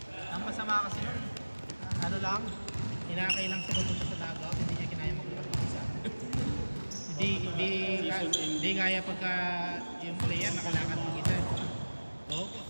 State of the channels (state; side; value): inverted; both; correlation -1.00